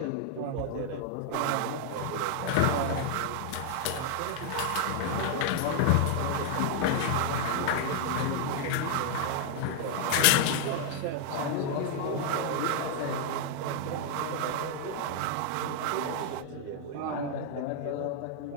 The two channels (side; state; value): both; different; correlation 0.00